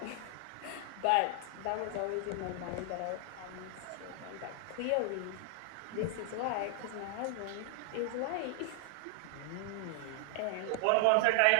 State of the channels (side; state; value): both; different; correlation 0.00